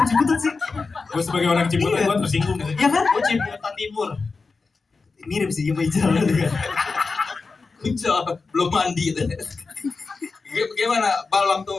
Ciputat sih? Gue sebagai orang Ciputat gue tersinggung gitu. Iya kan? Oh Ciputat Timur. Mirip sih sama Ijal juga. Ijal belum mandi deh. Gimana Bal waktu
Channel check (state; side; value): quieter; right; 4.3 dB